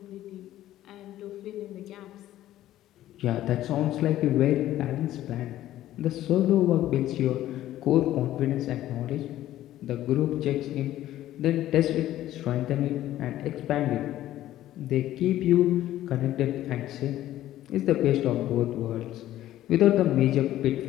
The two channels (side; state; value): right; quieter; 13.7 dB